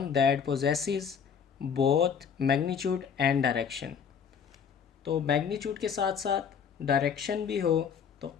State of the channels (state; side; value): quieter; right; 7.0 dB